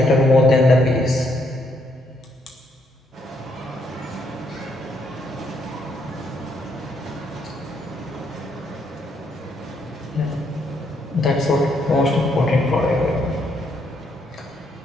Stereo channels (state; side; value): normal; both; correlation 0.73